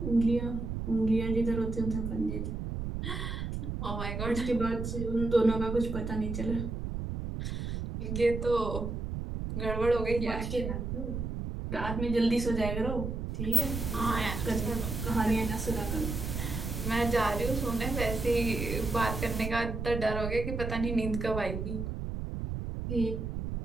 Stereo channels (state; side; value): noise; right; rumble, 4 dB below the sound